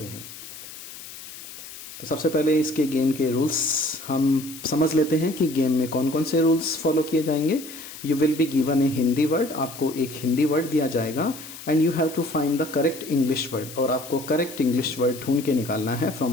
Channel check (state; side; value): noise; left; hiss, 14 dB below the sound